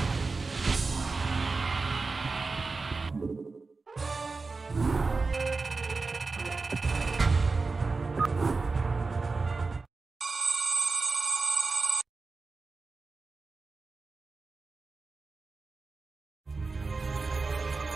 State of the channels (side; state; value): left; quieter; 4.0 dB